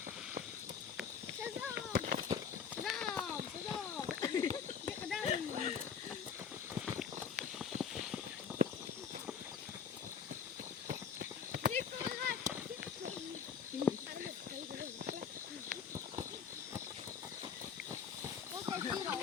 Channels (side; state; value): right; quieter; 7.0 dB